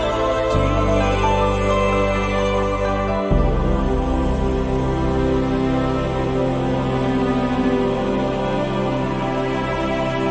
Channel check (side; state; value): both; identical; correlation 1.00